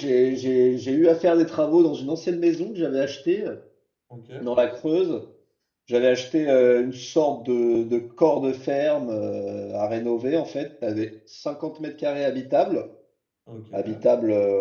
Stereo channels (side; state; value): both; identical; correlation 1.00